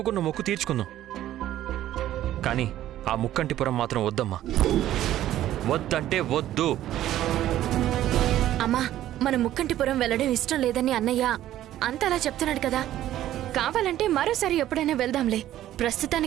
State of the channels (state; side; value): quieter; left; 13.1 dB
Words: మొక్కు తీర్చుకుందాం. కానీ ఆ ముక్కంటిపురం మాత్రం వద్దమ్మా. వద్దంటే వద్దు. అమ్మా, మన ముక్కంటిపురం వెళ్ళడం ఇష్టం లేదని అన్నయ్య అంతలా చెప్తున్నాడు కదా. కావాలంటే మరోసారి ఎప్పుడైనా వెళ్దాంలే.